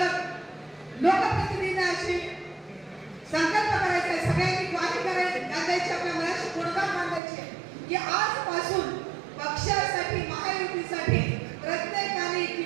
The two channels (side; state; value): left; drops out; at 7.2 s